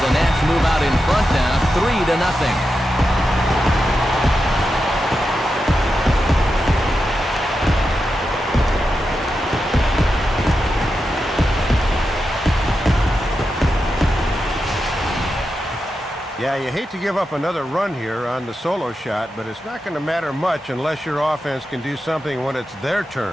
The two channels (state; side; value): normal; both; correlation 0.89